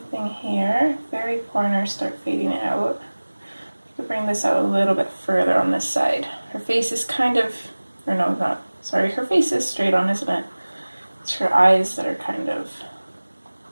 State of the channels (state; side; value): inverted; both; correlation -1.00